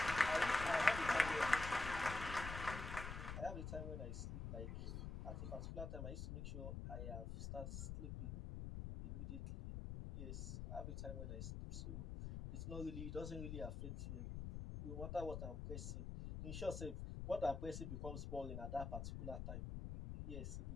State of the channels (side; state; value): left; noise; rumble, 4 dB below the sound